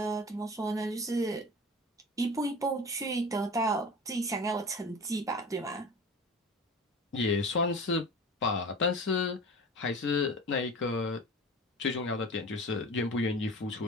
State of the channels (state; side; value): normal; both; correlation 0.36